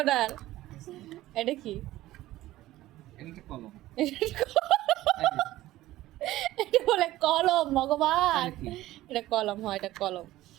এটা কি? এটা একটা কলম। এটা বলে কলম, ভগবান। এটা কি? এটা কলম, হয় এটা কলম।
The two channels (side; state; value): left; quieter; 15.9 dB